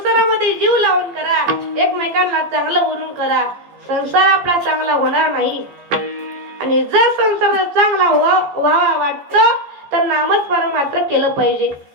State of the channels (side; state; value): left; late; 14 ms